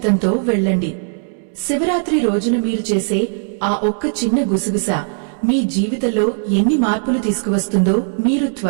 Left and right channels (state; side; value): silent; left; 67 dB below the other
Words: వెళ్ళండి. శివరాత్రి రోజున మీరు చేసే ఆ ఒక్క చిన్న గుసగుస మీ జీవితంలో ఎన్ని మార్పులు తీసుకువస్తుందో మీరు